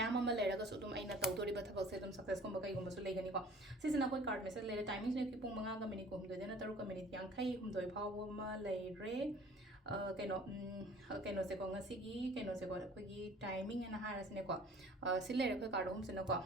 अमा लेरगा सु तुम आइना तौदोरी बथबक से तुम success को मकई गुम सु लेगनी को सिजना कोई कार्ड मेसेज लेरे टाइमिंग ने की पुंग मंगा ग मिनिट को हम देना तरुक मिनिट यांखै हम दोय फाव मा लेरे कनो से को ngasi कनो से को कोई टाइमिंग एना हारसने को सिलेरे कोई कार्ड हम सिन को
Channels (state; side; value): normal; both; correlation 0.49